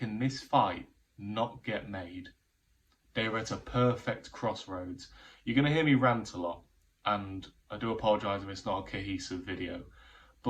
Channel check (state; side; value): identical; both; correlation 1.00